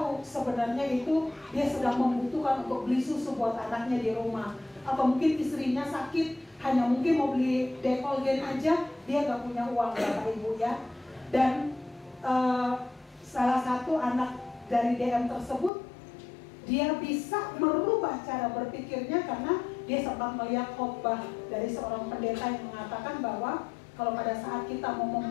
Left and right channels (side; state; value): right; drops out; at 15.7 s